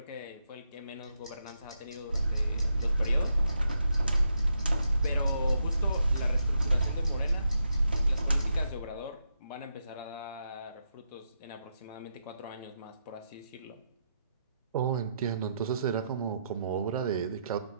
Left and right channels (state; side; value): inverted; both; correlation -0.82